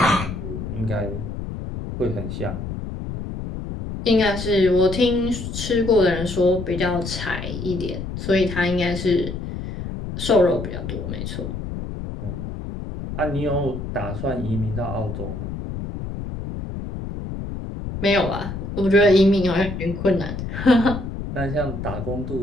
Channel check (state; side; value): noise; left; rumble, 7 dB below the sound